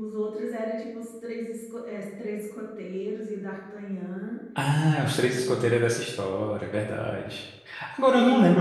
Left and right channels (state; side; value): identical; both; correlation 1.00